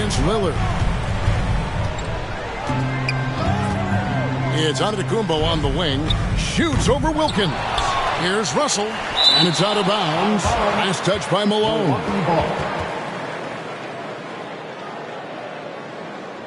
Lillard. It's Antetokounmpo on the wing. Shoots over Wilkins. Here's Russell. And it's out of bounds. Nice touch by Malone.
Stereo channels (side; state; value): both; identical; correlation 1.00